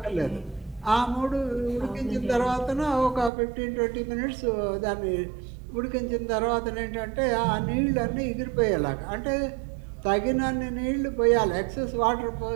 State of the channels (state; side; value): drops out; left; at 3.3 s